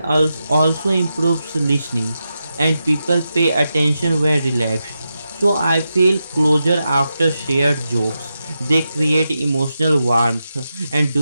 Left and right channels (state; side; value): inverted; both; correlation -0.89